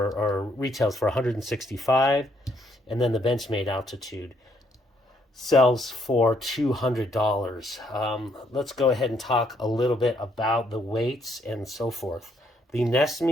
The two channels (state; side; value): normal; both; correlation 0.71